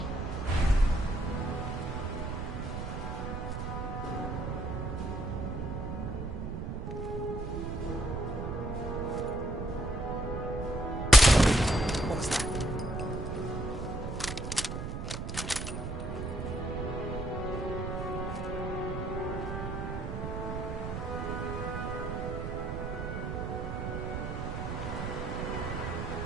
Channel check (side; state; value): right; noise; rumble, 4 dB below the sound